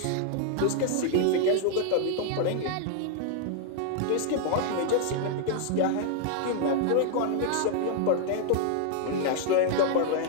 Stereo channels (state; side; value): different; both; correlation 0.00